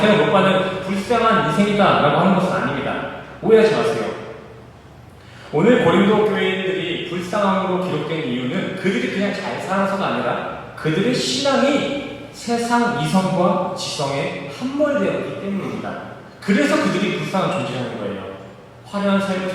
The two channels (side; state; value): both; identical; correlation 1.00